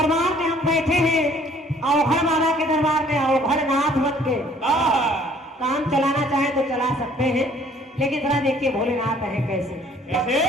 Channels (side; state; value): both; normal; correlation 0.58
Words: में हम बैठे हैं अवघड़ बाबा के दरबार में अवघड़नाथ बन के काम चलाना चाहे तो चला सकते हैं। लेकिन जरा देखिए भोलेनाथ है कैसे,